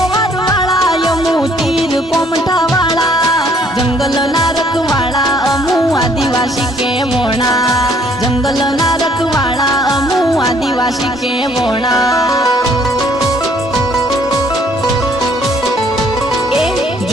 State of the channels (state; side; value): normal; both; correlation 0.62